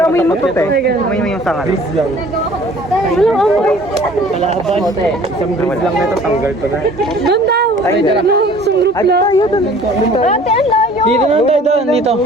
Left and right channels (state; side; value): normal; both; correlation 0.50